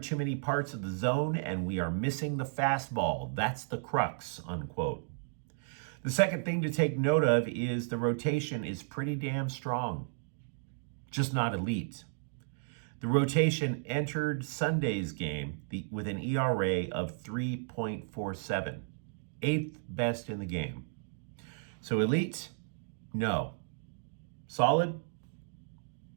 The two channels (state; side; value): silent; left; digital silence